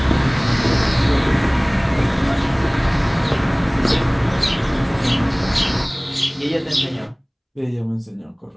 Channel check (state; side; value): identical; both; correlation 1.00